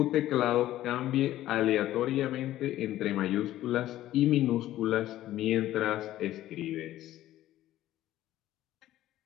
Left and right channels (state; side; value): quieter; right; 14.0 dB